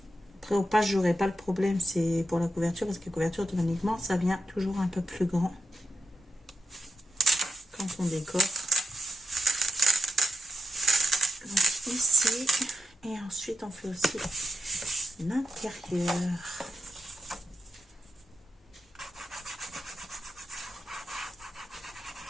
Après, au page, j'aurai pas le problème, c'est pour la couverture, parce que la couverture, automatiquement, ça vient toujours un peu plus grand quand on décore. Donc ici, et ensuite, on fait aussi l'intérieur.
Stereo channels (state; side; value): normal; both; correlation 0.87